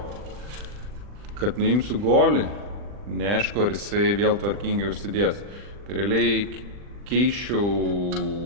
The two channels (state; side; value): late; left; 40 ms